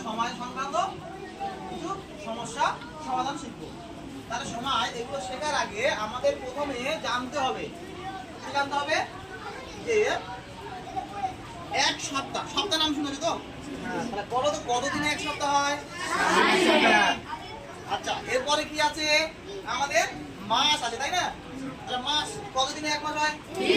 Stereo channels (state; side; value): identical; both; correlation 1.00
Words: সময় সংক্রান্ত কিছু সমস্যা সমাধান শিখবো। তাহলে সময় এগুলো শেখার আগে আমাদের প্রথমে জানতে হবে, কি জানতে হবে? যে এক সপ্তাহ, সপ্তাহ নাম শুনেছো তো? তাহলে বলো তো কতদিনে এক সপ্তাহ হয়? আচ্ছা, এরপরে কি আছে? আমাদের মাস আছে, তাই না? তাহলে মাস কতদিনে এক মাস হয়?